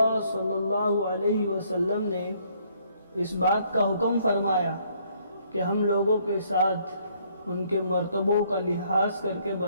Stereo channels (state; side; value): inverted; both; correlation -0.66